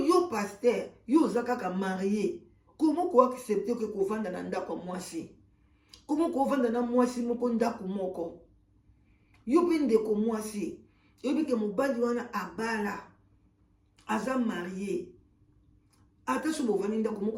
yo pasteur yo oza kaka marié komo koaccepte ke kovanda na ndako ya mwasi komo kovanda na mwasi moko ndako moko yo mpe ndeko mwasi yobi ke mobali wana abala aza marié ata so bovandi ndako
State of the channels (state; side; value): identical; both; correlation 1.00